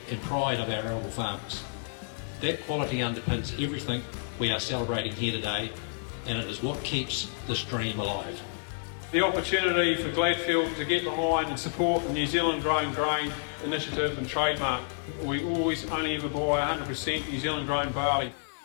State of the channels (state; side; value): silent; right; digital silence